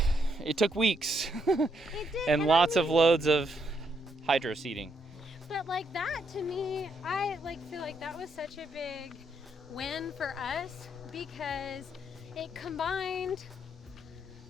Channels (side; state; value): both; normal; correlation 0.76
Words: weeks and lots of loads of hydro seeding. But like that, to me, I feel like that was such a big win for us, because it combined